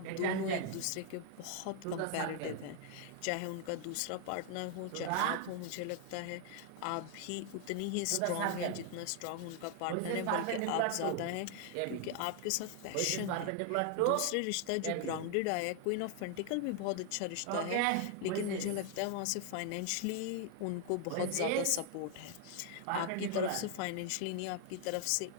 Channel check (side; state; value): both; different; correlation 0.00